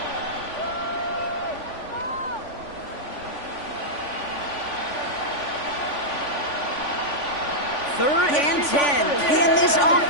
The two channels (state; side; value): late; right; 3.5 ms